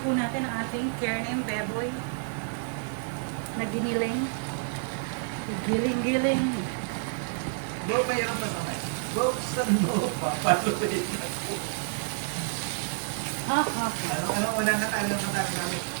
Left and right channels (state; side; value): silent; left; digital silence